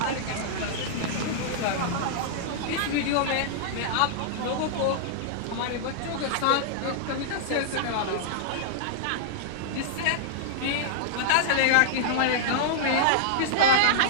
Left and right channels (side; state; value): both; different; correlation -0.02